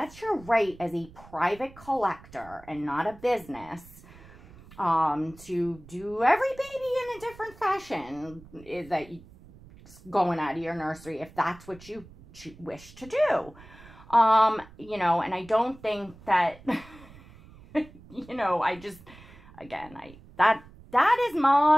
your right as a private collector and not a business. to do every baby in a different fashion is that you going out of your nursery if that's what you wish to do. You know, and I don't think that, you know, I just, again, that is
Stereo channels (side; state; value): right; noise; rumble, 21 dB below the sound